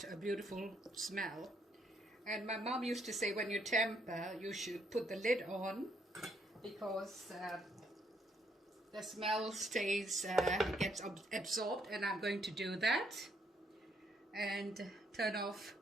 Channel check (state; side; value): normal; both; correlation 0.72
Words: a beautiful smell. And my mom used to say when you temper, you should put the lid on, because the smell gets absorbed, and I'm going to do that and turn off